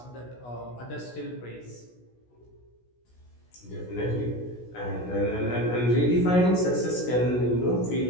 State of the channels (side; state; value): right; late; 16 ms